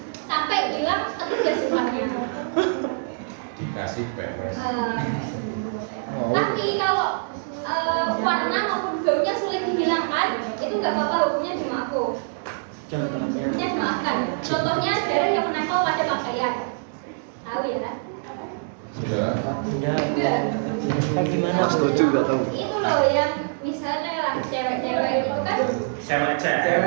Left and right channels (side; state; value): left; silent; digital silence